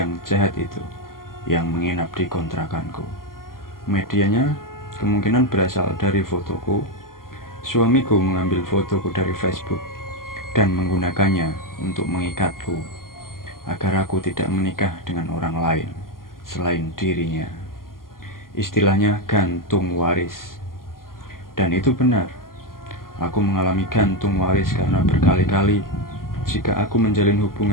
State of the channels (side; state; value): right; late; 0.91 ms